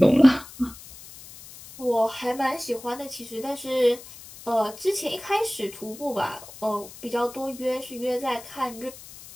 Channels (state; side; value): noise; left; hiss, 17 dB below the sound